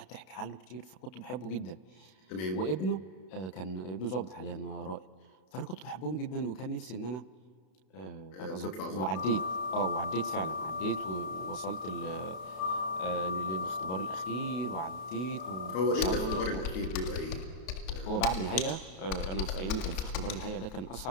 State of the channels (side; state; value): right; late; 32 ms